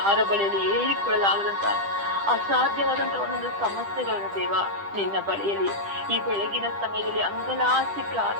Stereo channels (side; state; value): left; late; 10 ms